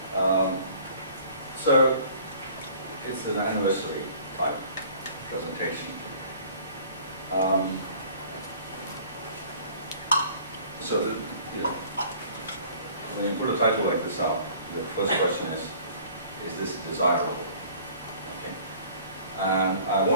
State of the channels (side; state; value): both; inverted; correlation -0.51